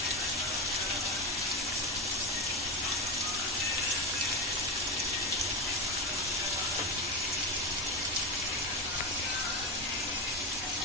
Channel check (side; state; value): both; normal; correlation 0.17